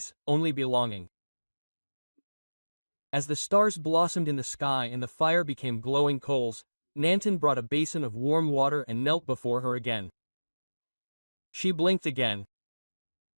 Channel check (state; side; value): inverted; both; correlation -1.00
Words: only belonging. As the stars blossomed in the sky and the fire became glowing coals, Nantan brought a basin of warm water and knelt before her again. She blinked again.